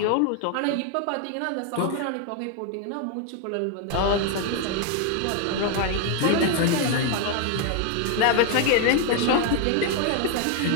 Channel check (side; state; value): both; different; correlation 0.01